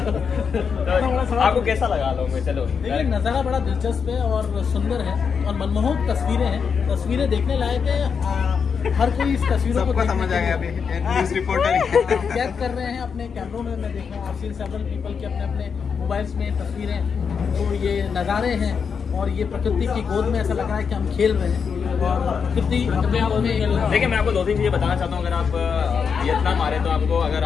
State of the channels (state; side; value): quieter; right; 6.3 dB